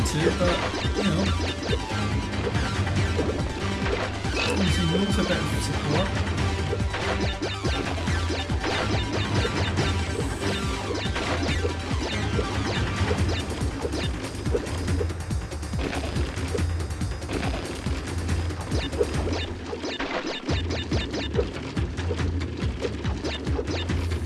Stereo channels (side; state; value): both; identical; correlation 1.00